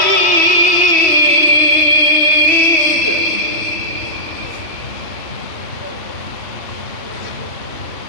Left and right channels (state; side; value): late; right; 3.1 ms